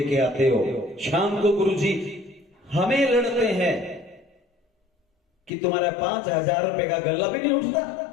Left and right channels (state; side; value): drops out; right; at 5.5 s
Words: के आते हो। शाम को गुरुजी हमें लड़ते हैं कि तुम्हारा 5000 रुपए का गल्ला भी नहीं उठता।